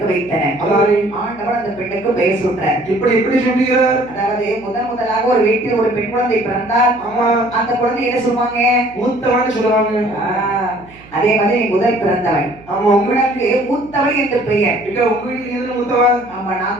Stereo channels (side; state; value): right; noise; hum, 23 dB below the sound